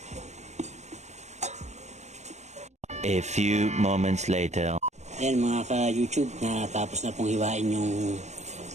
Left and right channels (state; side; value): late; left; 0.33 ms